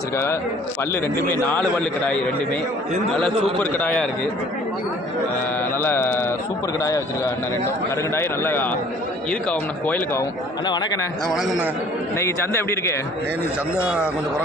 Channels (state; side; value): normal; both; correlation 0.53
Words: பல்லு ரெண்டுமே 4 பல்லு கடாய், ரெண்டுமே நல்லா சூப்பர் கடாயாக இருக்குது. நல்லா சூப்பர் கடாயாக வச்சுருக்காங்க அண்ணன். ரெண்டும் கருங்கடாய் நல்லா இருக்காகும்ண்ணா, கோயிலுக்கு ஆகும். அண்ணா வணக்கண்ணே. வணக்கண்ணா. இன்னைக்கு சந்தை எப்படி இருக்கு? நீ சந்தை கொஞ்சம்